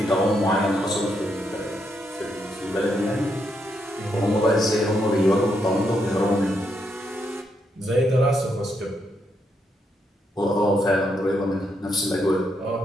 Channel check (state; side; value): normal; both; correlation 0.79